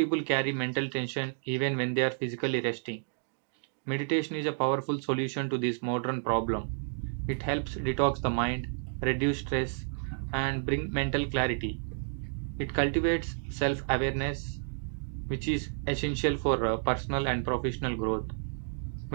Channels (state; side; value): silent; left; digital silence